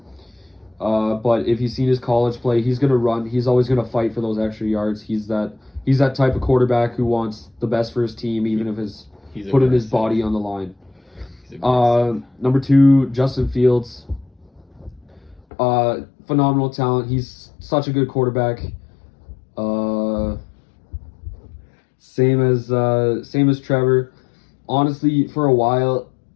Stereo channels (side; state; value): right; drops out; at 15.4 s